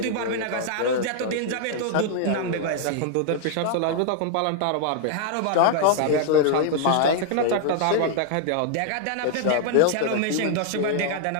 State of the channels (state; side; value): different; both; correlation 0.00